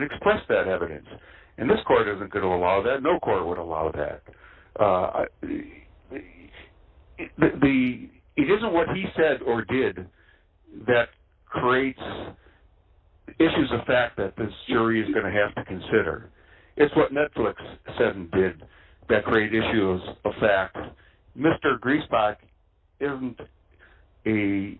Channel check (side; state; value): both; identical; correlation 1.00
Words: express that evidence. And this court isn't going to allow that. No court would allow that. It isn't what he said or did that creates issues of fact that this jury is going to have to consider. It's what Netflix said and did that create issues of fact. Mr. Griesbach isn't a